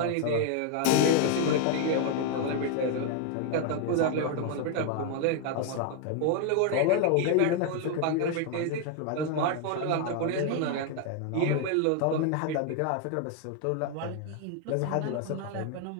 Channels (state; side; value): different; both; correlation 0.00